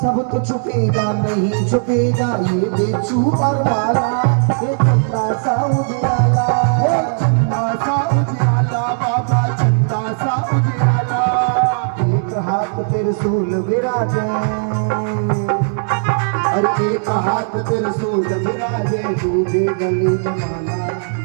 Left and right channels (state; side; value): silent; left; digital silence